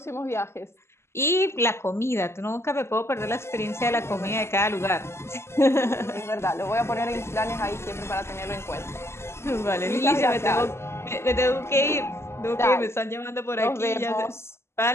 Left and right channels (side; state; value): right; late; 0.13 ms